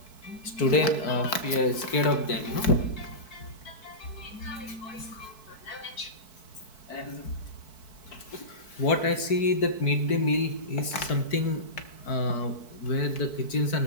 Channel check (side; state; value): right; late; 4.6 ms